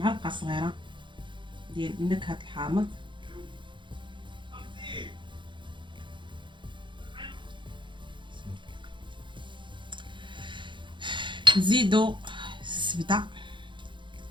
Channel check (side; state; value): left; late; 0.23 ms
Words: صغيره ديال نكهه الحامض، نزيدو الزبده،